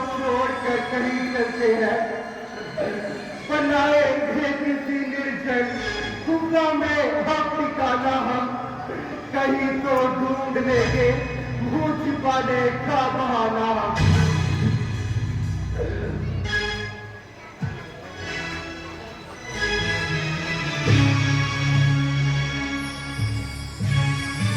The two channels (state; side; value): identical; both; correlation 1.00